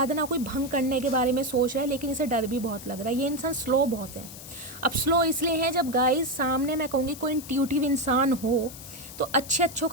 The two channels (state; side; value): noise; left; hiss, 14 dB below the sound